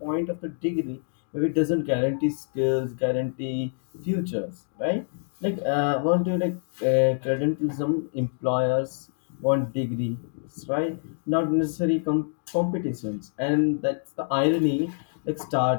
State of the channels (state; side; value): silent; right; digital silence